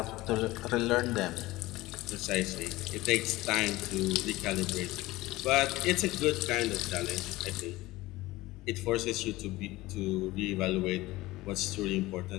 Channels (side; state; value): right; quieter; 18.9 dB